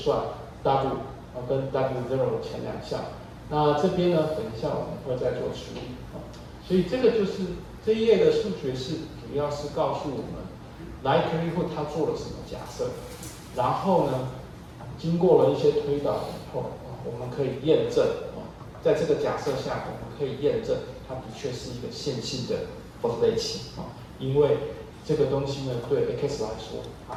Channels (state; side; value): identical; both; correlation 1.00